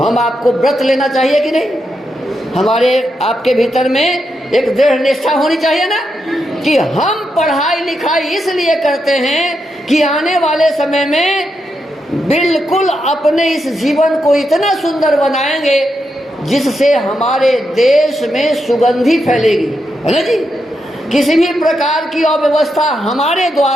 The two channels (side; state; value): both; normal; correlation 0.84